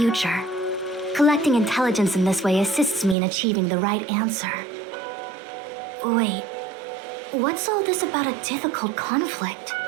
Collecting intelligence in this way assists me in achieving the right answer. Wait, what's all this about a difficult conflict?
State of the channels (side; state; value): left; drops out; at 3.2 s